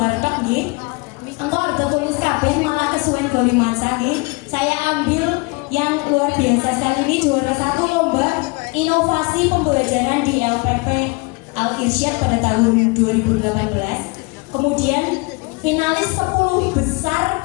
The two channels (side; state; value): right; quieter; 28.1 dB